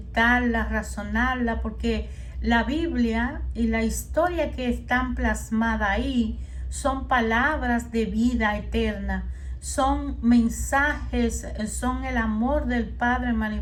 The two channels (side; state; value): both; identical; correlation 1.00